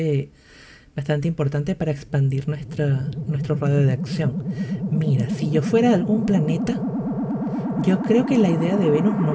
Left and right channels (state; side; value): identical; both; correlation 1.00